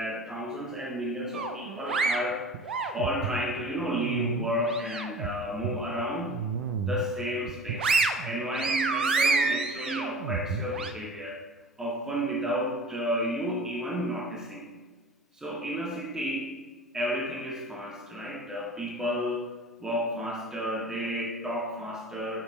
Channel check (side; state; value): both; normal; correlation 0.40